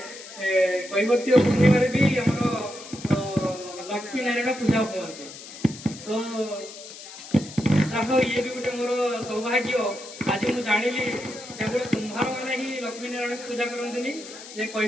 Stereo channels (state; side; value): noise; left; hiss, 14 dB below the sound